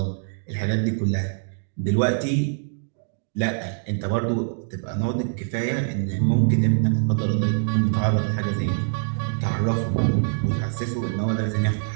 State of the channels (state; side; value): silent; left; digital silence